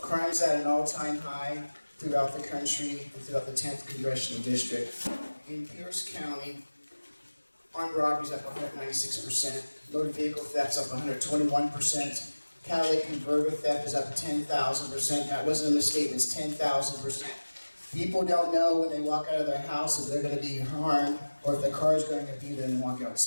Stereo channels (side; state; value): both; inverted; correlation -1.00